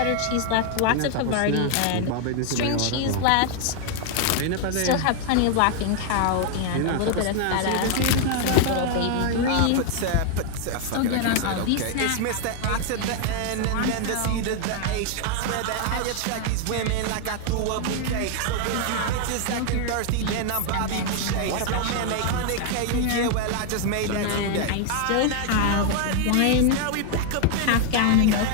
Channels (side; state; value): both; different; correlation 0.00